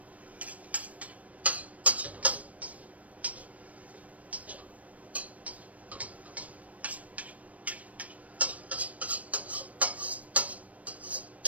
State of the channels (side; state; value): left; late; 0.068 ms